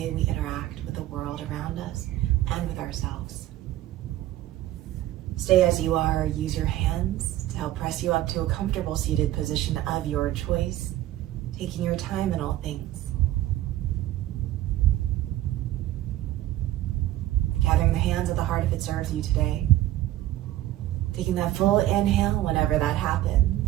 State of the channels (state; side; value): quieter; left; 14.4 dB